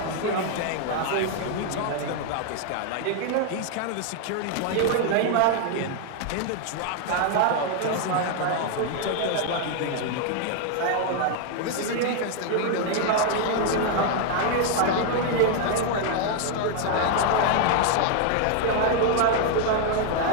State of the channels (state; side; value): different; both; correlation 0.00